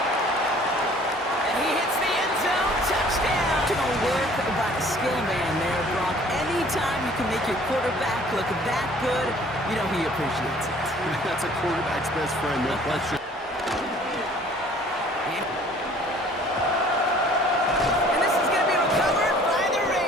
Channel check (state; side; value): normal; both; correlation 0.53